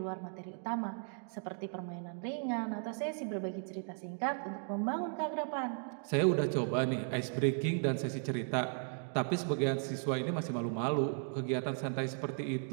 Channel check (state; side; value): silent; left; 54 dB below the other